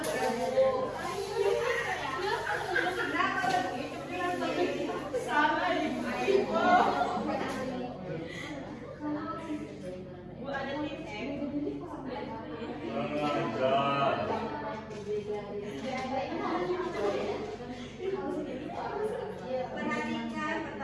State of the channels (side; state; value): both; identical; correlation 1.00